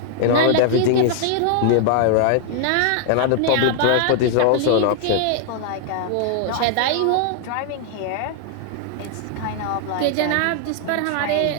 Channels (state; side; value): different; both; correlation 0.00